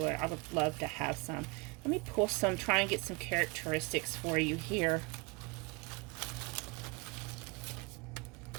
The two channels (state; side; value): quieter; left; 27.6 dB